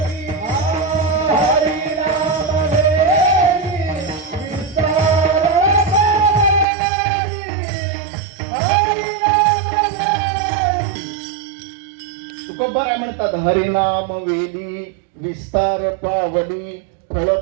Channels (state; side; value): drops out; left; at 6.7 s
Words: हरिनाम वेली विस्तार पावली